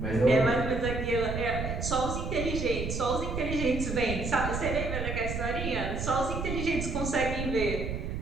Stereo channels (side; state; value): right; noise; rumble, 4 dB below the sound